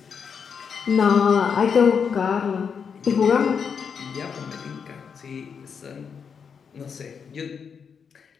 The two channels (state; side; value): quieter; right; 6.5 dB